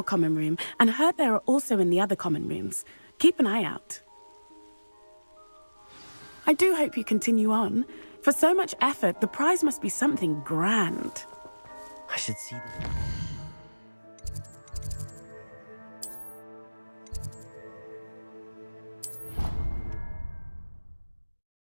common room and heard there are also in the other common rooms. Keep an eye out. I do hope you continue on. For so much effort, the prize must be something grand. I should see this.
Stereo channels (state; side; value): inverted; both; correlation -1.00